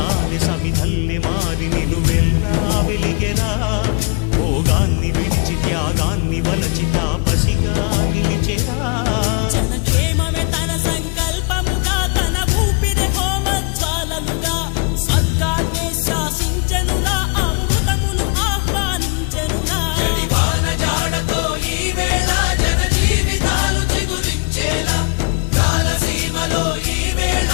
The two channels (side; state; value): right; quieter; 33.0 dB